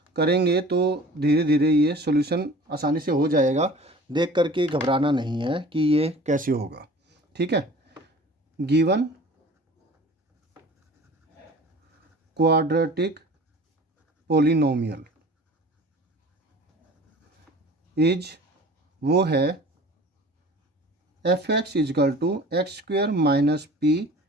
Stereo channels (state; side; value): normal; both; correlation 0.43